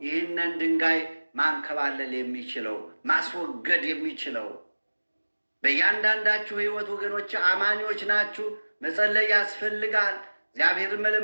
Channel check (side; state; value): both; inverted; correlation -1.00